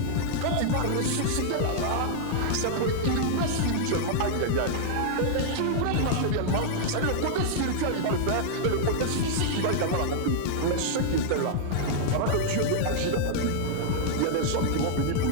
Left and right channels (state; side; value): different; both; correlation -0.01